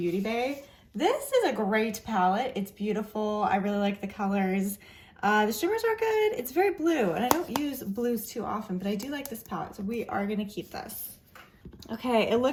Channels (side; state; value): both; identical; correlation 1.00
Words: Bay. This is a great palette. It's beautiful. I really like the colors. The shimmers are good. It's very blue, and I don't use blues too often, but I do like this palette, so we are gonna keep this. Okay, it